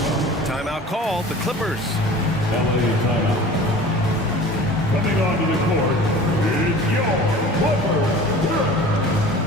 Timeout called, the Clippers. LA timeout. Coming onto the court is your Clippers.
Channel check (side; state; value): both; normal; correlation 0.41